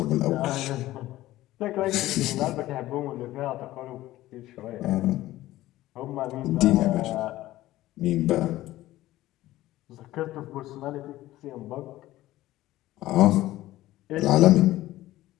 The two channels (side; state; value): right; quieter; 15.9 dB